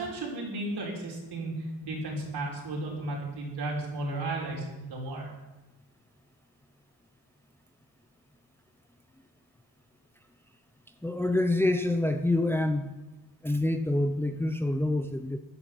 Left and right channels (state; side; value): normal; both; correlation 0.80